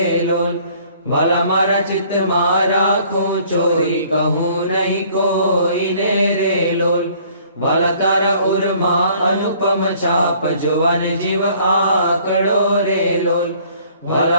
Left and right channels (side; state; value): both; inverted; correlation -0.57